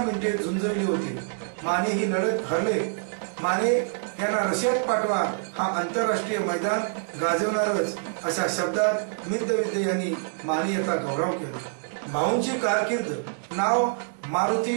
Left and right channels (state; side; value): silent; left; digital silence